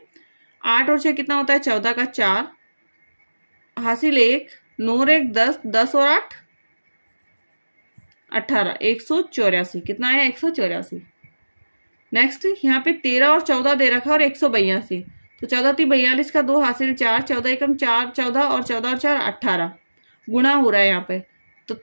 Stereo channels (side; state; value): both; inverted; correlation -1.00